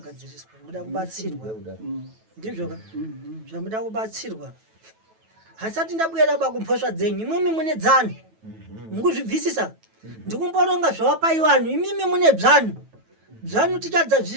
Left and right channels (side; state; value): left; late; 9.2 ms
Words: muda kubatsirwa ndizvoka zvamuda kubatsirwa hasati ndabwera bakumphosva dzenyu imwemi mune dzano mukuzvibvisisa ndikumboronga zvawapaiwanhu imimi mune bzanu bzanu tichadza